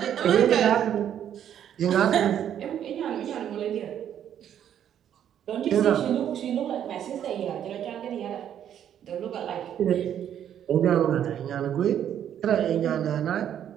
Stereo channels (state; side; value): quieter; left; 9.9 dB